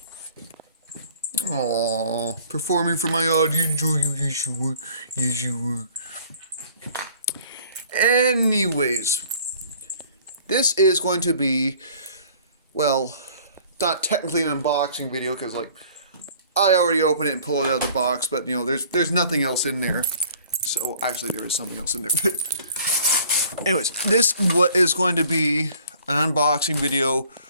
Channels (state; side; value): inverted; both; correlation -0.53